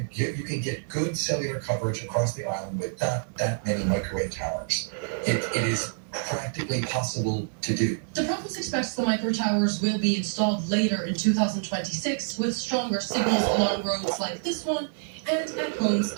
get good cellular coverage across the island with not that many microwave towers. It is practically possible to do. The province expects the micro towers will be installed later in 2026 with stronger signals along roads like this one and at homes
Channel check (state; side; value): silent; left; digital silence